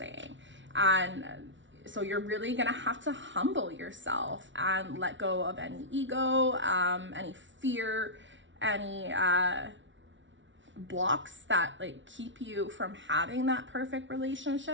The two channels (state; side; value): late; left; 0.55 ms